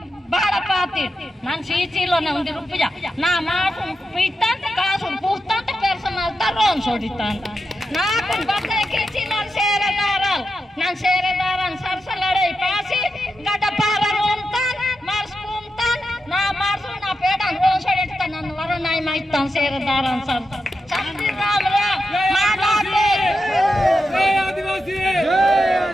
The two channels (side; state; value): both; normal; correlation 0.88